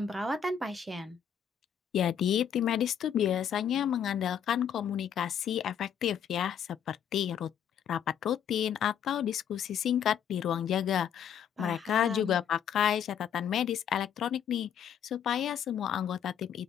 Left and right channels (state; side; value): quieter; right; 8.5 dB